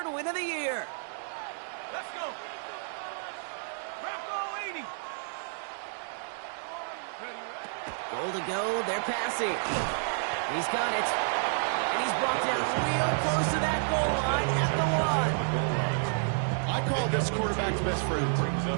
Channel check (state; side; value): silent; left; digital silence